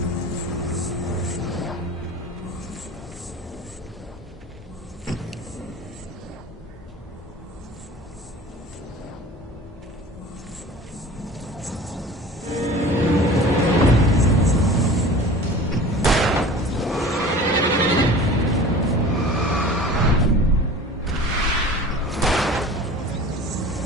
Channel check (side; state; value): both; normal; correlation 0.41